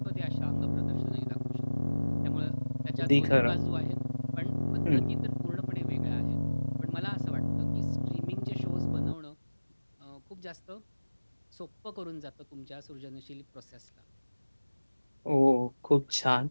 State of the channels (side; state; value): both; inverted; correlation -1.00